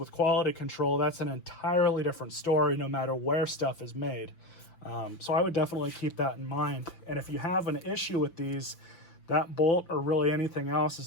quality control, that's an entirely different story no matter where stuff is made. So I would definitely keep that in mind. And if you have an issue with these, that bolt or really anything else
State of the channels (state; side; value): late; right; 5.9 ms